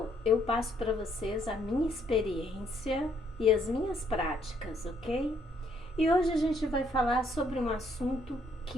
eu passo para vocês a minha experiência e as minhas práticas, ok? E hoje a gente vai falar sobre um assunto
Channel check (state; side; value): normal; both; correlation 0.69